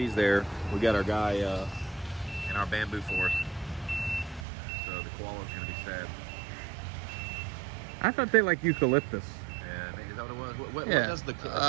there, we got our guy in our bamboo forest. So the koala's gonna be sad. I thought they like eucalyptus. Yeah, is that what it was? What does the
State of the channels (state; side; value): drops out; left; at 4.5 s